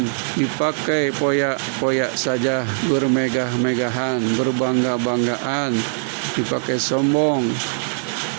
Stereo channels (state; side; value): silent; left; digital silence